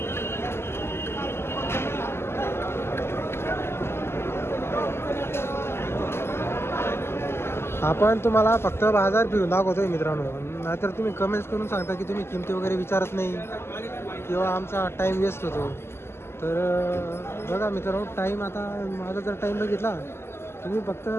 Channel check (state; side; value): late; right; 0.12 ms